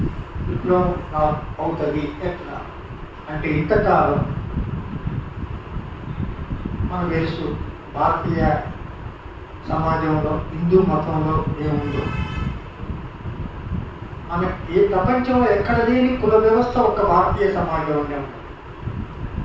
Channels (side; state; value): both; identical; correlation 1.00